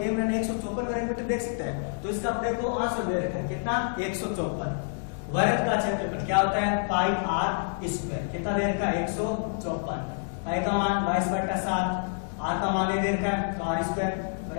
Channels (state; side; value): silent; right; digital silence